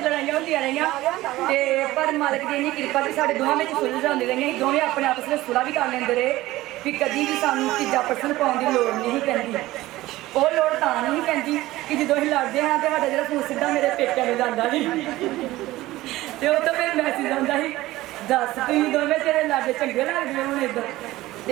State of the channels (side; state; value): left; quieter; 17.3 dB